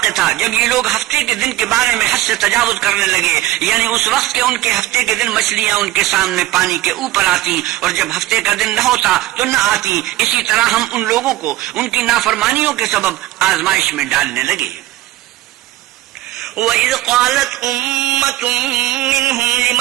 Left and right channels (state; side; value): quieter; left; 15.9 dB